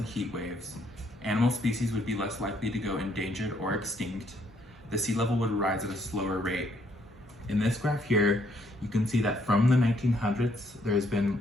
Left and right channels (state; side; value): normal; both; correlation 0.69